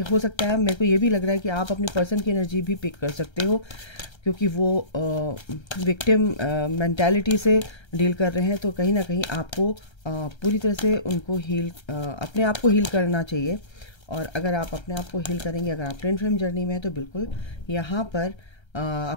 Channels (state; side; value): late; right; 1.3 ms